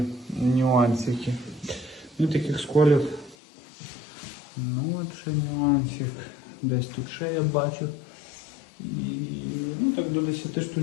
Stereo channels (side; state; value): right; drops out; at 3.4 s